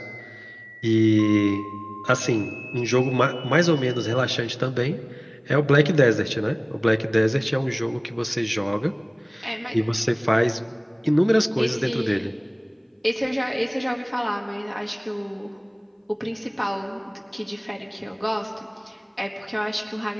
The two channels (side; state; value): both; identical; correlation 1.00